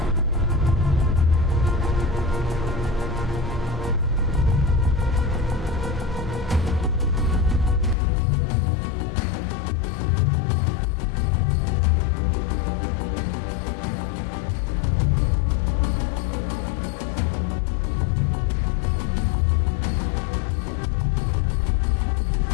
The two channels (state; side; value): drops out; right; at 8.0 s